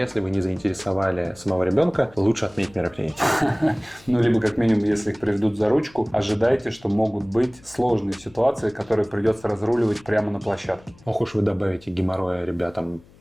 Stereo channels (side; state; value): left; noise; hum, 26 dB below the sound